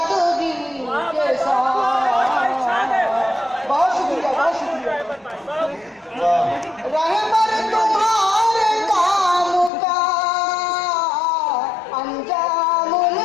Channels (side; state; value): right; drops out; at 9.7 s